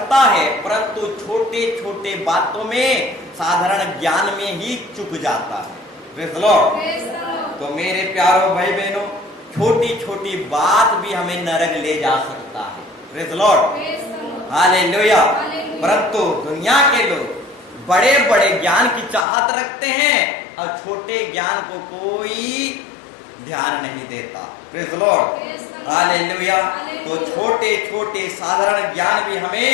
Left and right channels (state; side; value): drops out; right; at 19.2 s